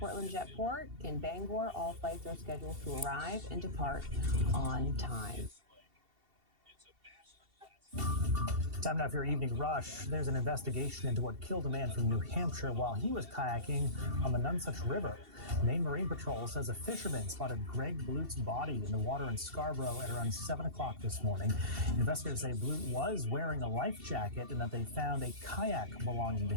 Jetport. In Bangor, all flights are scheduled to arrive and depart on time. Time now for your evening rush. There's an investigation into what killed a man from New Hampshire while he was kayaking on the Nonsuch River. Maine Marine Patrol says a fisherman spotted Greg Blut's body in the water in Scarborough at around 7 o'clock this morning. Investigators say Blut was wearing a life jacket and that they found a kayak belonging to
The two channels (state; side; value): late; left; 2.7 ms